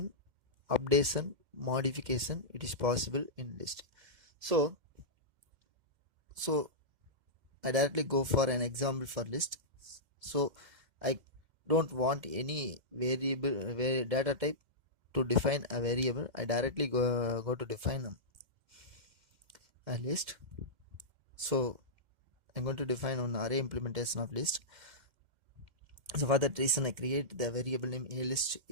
updation, modification, it is possible in list. So I directly go for an example for list. So I don't want any variable data type to define a variable. I directly go to define a list. So I'm going to define an array implementation of list. So for that reason I create the variable name a list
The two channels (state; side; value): late; left; 2.1 ms